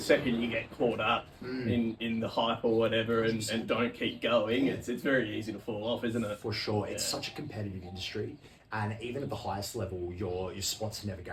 you get caught up in the hype or whatever and don't keep going, it's very easy to fall off, isn't it? For sure. It's such a competitive industry, and even at the highest level, your spots are never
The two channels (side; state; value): both; identical; correlation 1.00